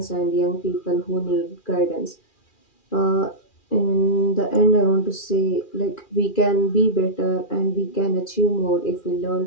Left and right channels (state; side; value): late; right; 2.4 ms